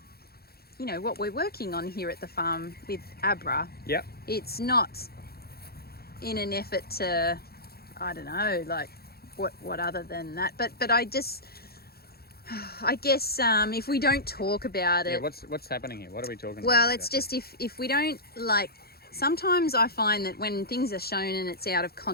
you know, what we're working on here at the farm with Abra. Yep. It's not in an effort to, I don't know, like what other than that. But I just, I guess if we don't talk about it. Yeah, what's happening here? What are we talking about? Well, it's just if we don't, like, sometimes I find that when things are shown and it's out of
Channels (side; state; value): right; late; 0.45 ms